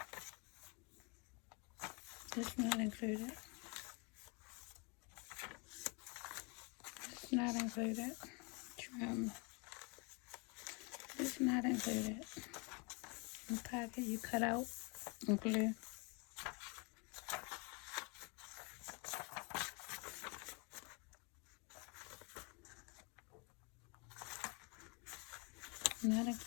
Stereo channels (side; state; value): right; quieter; 31.9 dB